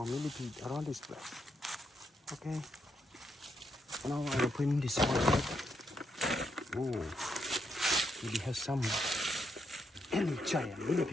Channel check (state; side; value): normal; both; correlation 0.80